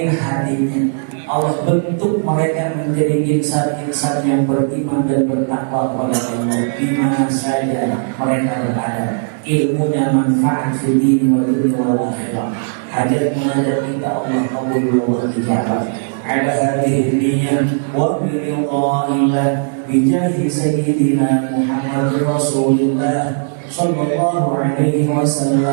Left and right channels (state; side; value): silent; left; digital silence